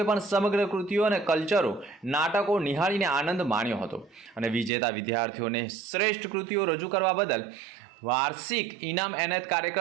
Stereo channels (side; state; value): left; drops out; at 4.7 s